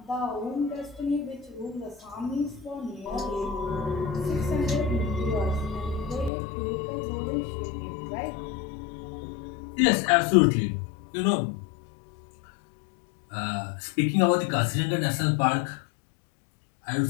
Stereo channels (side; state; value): right; drops out; at 6.3 s